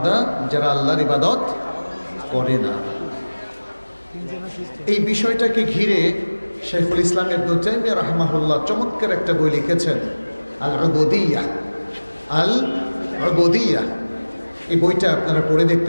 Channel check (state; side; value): inverted; both; correlation -1.00